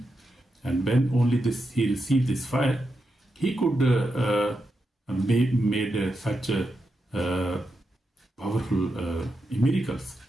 and when only he received this fire, he could made such powerful miracles.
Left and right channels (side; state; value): both; normal; correlation 0.86